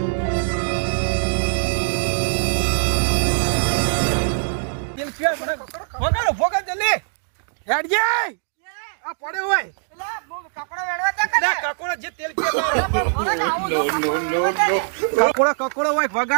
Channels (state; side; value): silent; left; digital silence